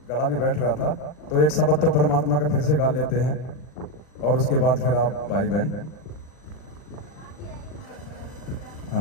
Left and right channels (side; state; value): right; late; 40 ms